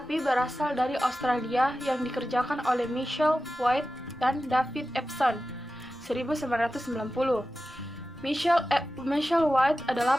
berasal dari Australia yang dikerjakan oleh Michelle White dan David Epson, 1990. Michelle White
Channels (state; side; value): normal; both; correlation 0.93